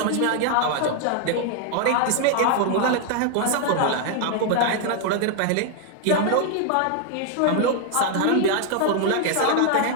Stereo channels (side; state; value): both; different; correlation 0.00